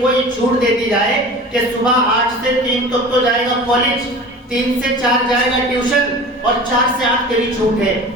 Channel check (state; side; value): normal; both; correlation 0.38